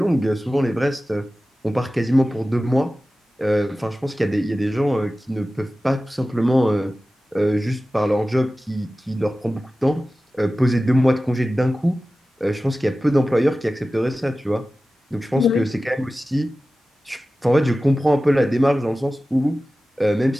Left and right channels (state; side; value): normal; both; correlation 0.96